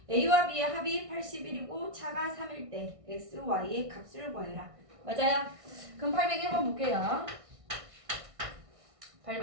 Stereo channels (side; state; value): left; late; 1.6 ms